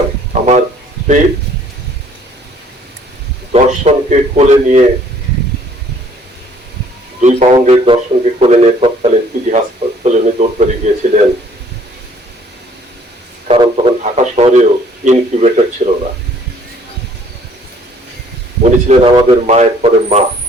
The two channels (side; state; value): both; normal; correlation 0.59